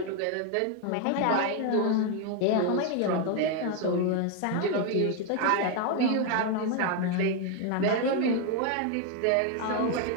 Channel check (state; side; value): different; both; correlation 0.01